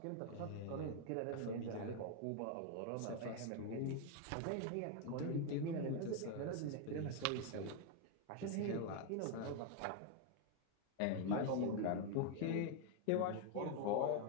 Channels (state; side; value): different; both; correlation 0.01